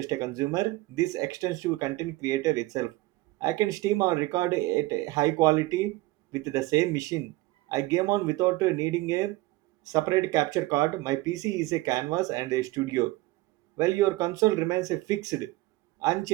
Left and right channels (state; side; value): quieter; left; 19.4 dB